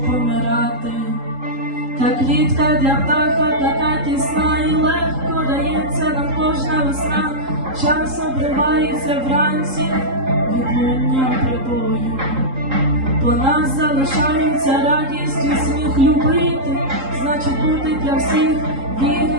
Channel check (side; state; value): left; late; 3.8 ms